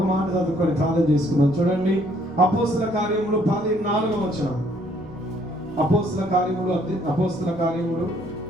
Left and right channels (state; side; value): normal; both; correlation 0.64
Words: మాట చదువుకొని ప్రార్థన చేసుకున్నాం. చూడండి, అపోస్తుల కార్యములు 14వ వచనం. అపోస్తుల కార్యములు